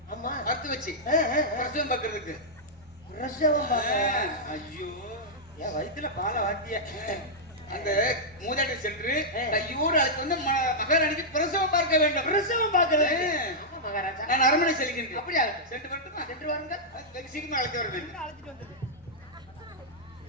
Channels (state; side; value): normal; both; correlation -0.08